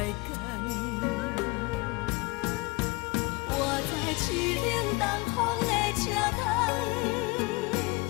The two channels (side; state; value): right; quieter; 25.2 dB